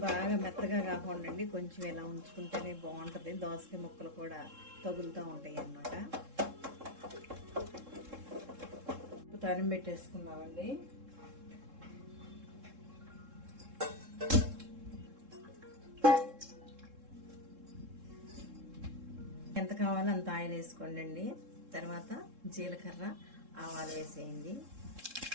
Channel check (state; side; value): late; left; 3.7 ms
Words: బాగా మెత్తగా కాకుండా కొంచెం ఇలా ఉంచుకుంటేనే బాగుంటుంది. దోసకాయ ముక్కలు కూడా తగులుతూ ఉంటాయి అన్నమాట. తాలింపు పెట్టేసుకుందామండి. ఎంత కావాలో అంత ఆయిల్ వేసుకోండి అండి. తర్వాత జీలకర్ర, ఆవాలు వేసేయండి.